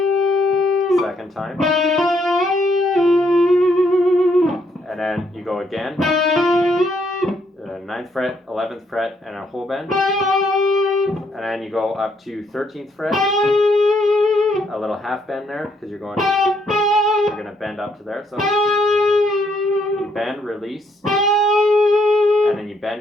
second time, and then you go again, 9th fret, 11th fret, and a whole bend, and then you go up to 13th fret, a little half bend there, because you're going to bend up to there, so you bend, release, and then you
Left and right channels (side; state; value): both; normal; correlation 0.72